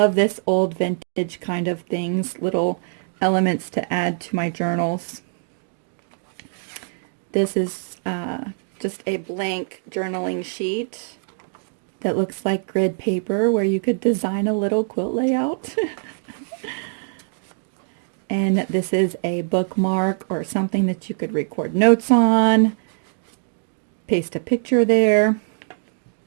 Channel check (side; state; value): left; silent; 59 dB below the other